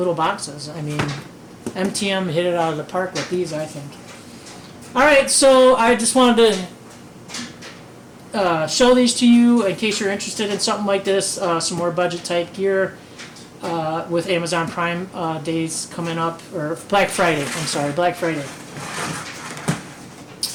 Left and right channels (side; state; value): both; identical; correlation 1.00